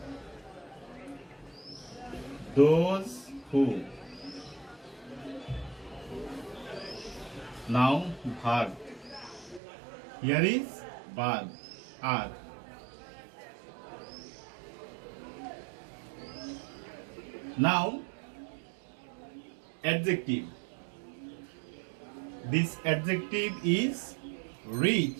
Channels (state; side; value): drops out; left; at 9.6 s